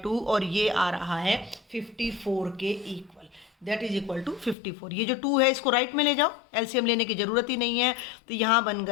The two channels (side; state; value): right; drops out; at 4.5 s